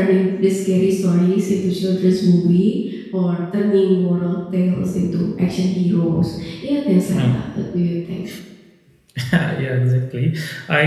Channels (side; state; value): both; identical; correlation 1.00